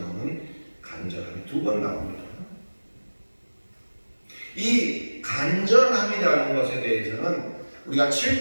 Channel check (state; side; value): inverted; both; correlation -1.00